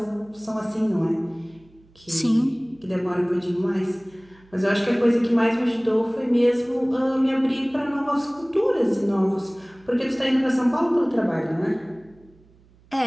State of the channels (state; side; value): noise; right; hum, 29 dB below the sound